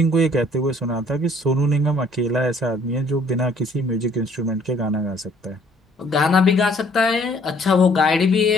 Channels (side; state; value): both; normal; correlation 0.60